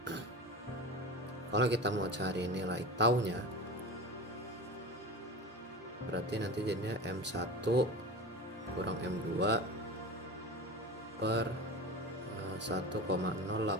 kalau kita mau cari nilai taunya, berarti nanti jadinya M1 kurang M2 per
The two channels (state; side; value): normal; both; correlation 0.30